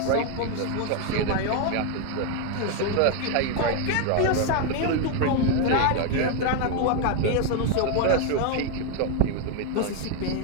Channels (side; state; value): both; different; correlation 0.01